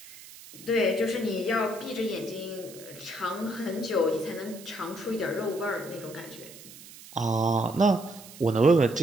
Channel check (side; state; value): right; noise; hiss, 18 dB below the sound